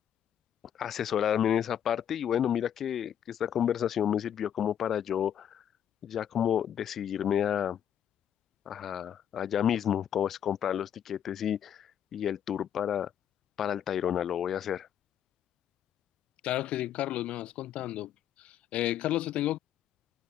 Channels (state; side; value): quieter; right; 9.6 dB